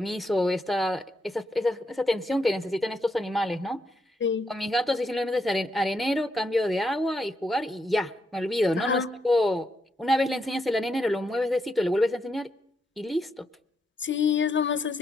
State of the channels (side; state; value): both; normal; correlation 0.80